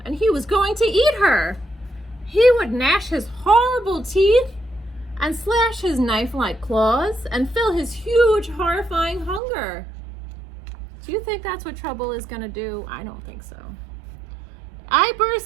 and he was going to eat her. He would gnash his horrible teeth and slash his knife-like claws and fill his huge, horrifying hunger. Do you think that's what Trouble is gonna do? I don't think so. I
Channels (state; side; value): drops out; left; at 9.4 s